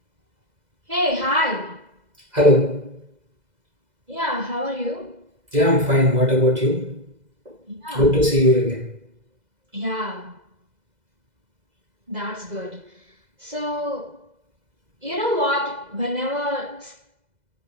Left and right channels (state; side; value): late; left; 2.0 ms